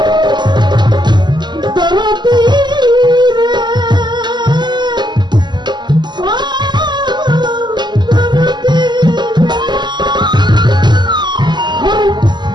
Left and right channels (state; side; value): late; left; 0.21 ms